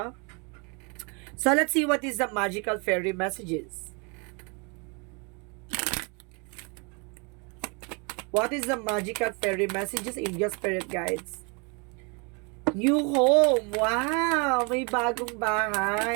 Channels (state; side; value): quieter; left; 33.0 dB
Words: So, let's see what is the magical fairy messages. What is the magical fairy messages, angel spirit guides? New home. Wow! May bagong